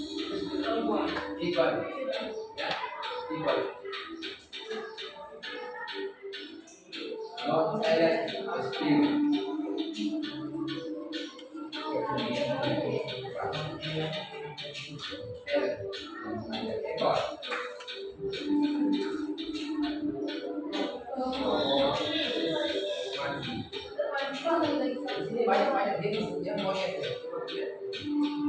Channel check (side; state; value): both; identical; correlation 1.00